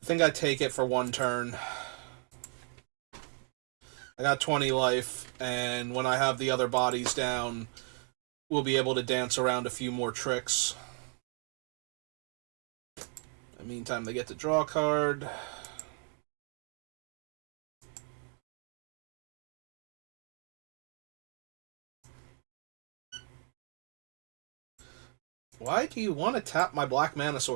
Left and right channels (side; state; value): left; quieter; 38.3 dB